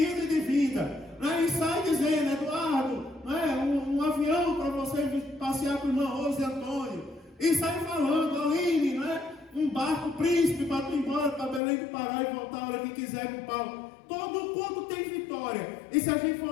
e de vinda. Não é? E sai dizendo, Eduardo, não é? Um avião para você passear com o irmão Rose e Antônio. E sai falando, Aline, não é? Um barco príncipe para tu ir embora para Belém do Pará e voltar a hora que quiser com o Paulo. Todo culto tem vitória. E se a gente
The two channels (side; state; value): right; drops out; at 11.6 s